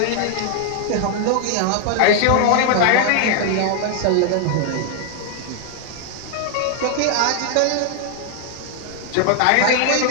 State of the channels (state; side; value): different; both; correlation 0.00